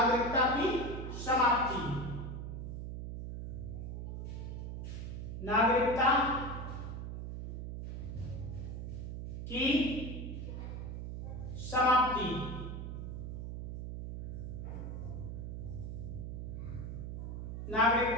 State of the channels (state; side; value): noise; right; hum, 6 dB below the sound